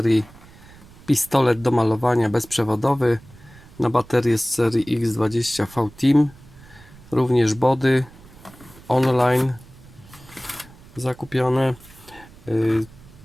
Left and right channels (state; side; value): noise; right; rumble, 22 dB below the sound